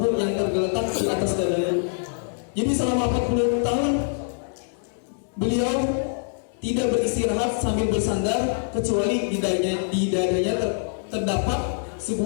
yang tergeletak di atas dadaku. Jadi selama 40 tahun beliau tidak beristirahat sambil bersandar kecuali di dadanya terdapat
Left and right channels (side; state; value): right; silent; 62 dB below the other